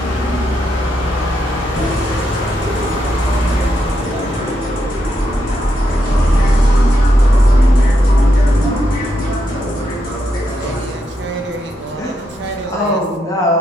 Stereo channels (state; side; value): normal; both; correlation 0.81